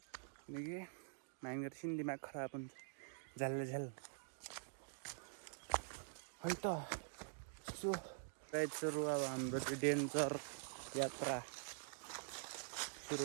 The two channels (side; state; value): left; silent; digital silence